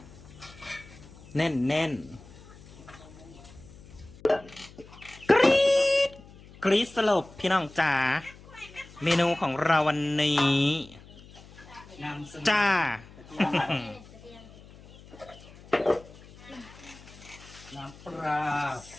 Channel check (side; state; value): left; noise; hum, 21 dB below the sound